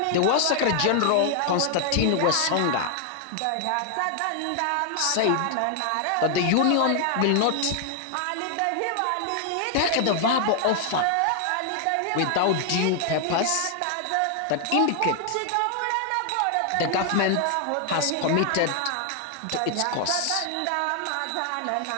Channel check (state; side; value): different; both; correlation 0.00